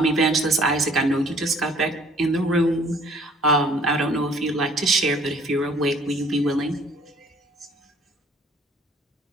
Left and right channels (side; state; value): both; normal; correlation 0.56